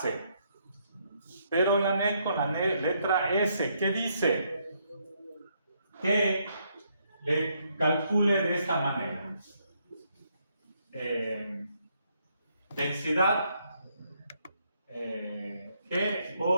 Pero en la NEC con la letra S, ¿qué dice? Que le calcule de esta manera. Densidad G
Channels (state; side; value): inverted; both; correlation -0.74